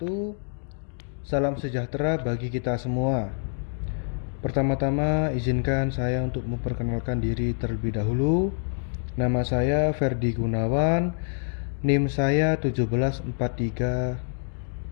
Salam sejahtera bagi kita semua. Pertama-tama izinkan saya untuk memperkenalkan diri terlebih dahulu. Nama saya Ferdi Gunawan, NIM saya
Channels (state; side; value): silent; right; digital silence